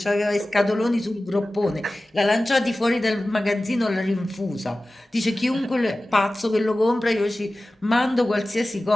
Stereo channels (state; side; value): normal; both; correlation 0.96